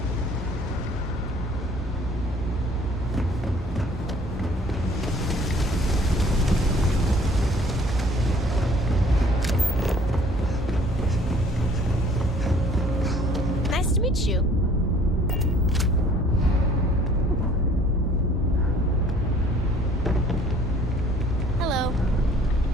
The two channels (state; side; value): normal; both; correlation 0.55